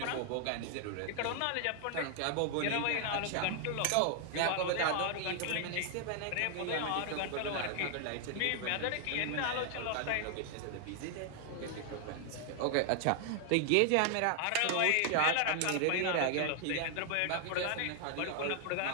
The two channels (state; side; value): different; both; correlation 0.00